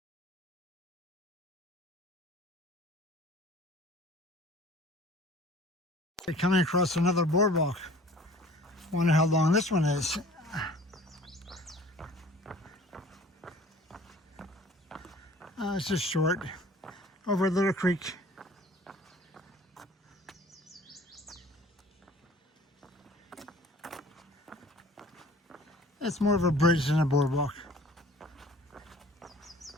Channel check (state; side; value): normal; both; correlation 0.48